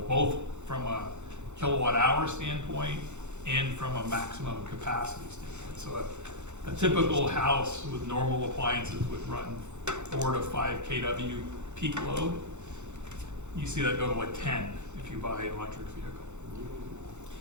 both from a kilowatt hour standpoint and from a maximum capacity standpoint. So a typical house with normal appliances would run 4 to 5 kW peak load. You see that go to like 10 if you buy an electric vehicle.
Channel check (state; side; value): late; left; 0.83 ms